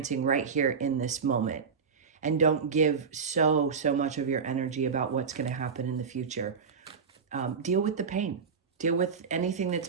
right here in this moment. And don't give so much of your energy about what's going to happen in the future. Deal with the pain. Deal with anything that's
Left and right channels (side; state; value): left; quieter; 5.8 dB